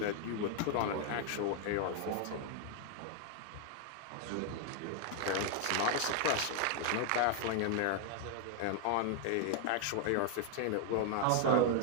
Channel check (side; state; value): both; different; correlation 0.00